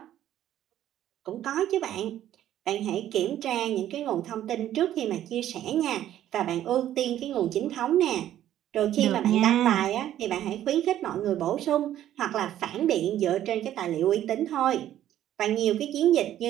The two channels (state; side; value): quieter; left; 12.0 dB